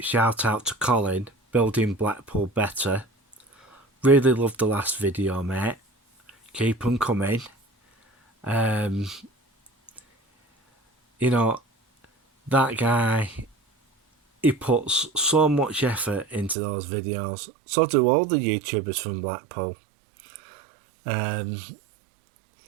out to Colin, Building Blackpool Better. Really loved the last video, mate. Keep them coming. That guy, he puts so much effort into those videos. So do all the YouTubers from Blackpool.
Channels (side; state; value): left; drops out; at 16.6 s